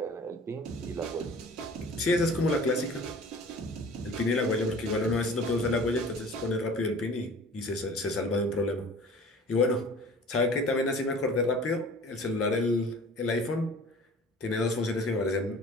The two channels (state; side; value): normal; both; correlation 0.45